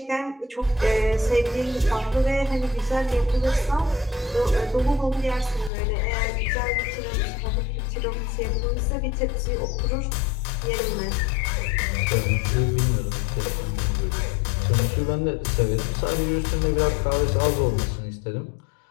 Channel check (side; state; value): right; drops out; at 5.7 s